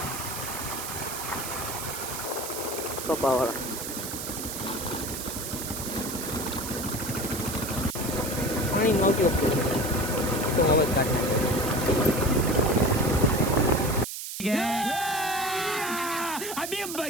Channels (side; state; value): right; noise; hiss, 7 dB below the sound